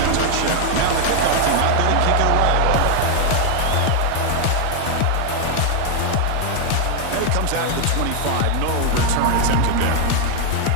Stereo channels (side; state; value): both; different; correlation 0.00